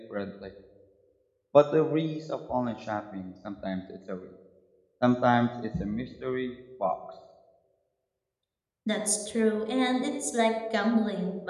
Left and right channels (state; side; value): identical; both; correlation 1.00